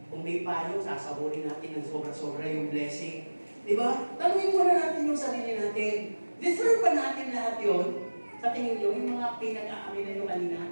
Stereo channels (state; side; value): inverted; both; correlation -1.00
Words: Kung may payo, sasaburin natin ng sobra-sobra yung blessing. Diba? Tanungin muna natin yung sarili natin. Deserve ba natin lahat yun? Sa tingin nyo, yung mga pinag-aaminan nyo kanina,